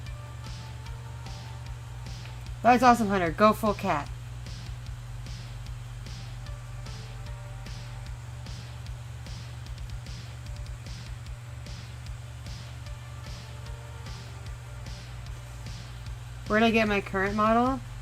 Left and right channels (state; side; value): identical; both; correlation 1.00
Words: That's awesome, Hunter. Go full cat. Where did I get my current model?